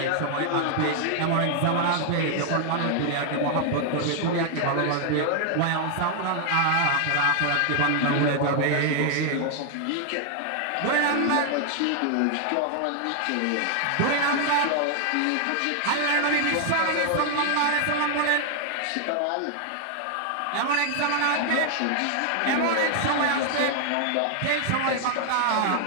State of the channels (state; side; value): different; both; correlation 0.00